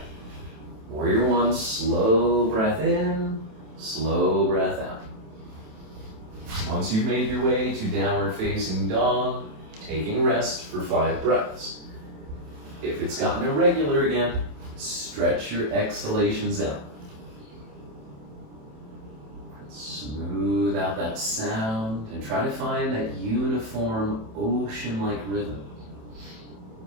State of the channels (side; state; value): left; late; 27 ms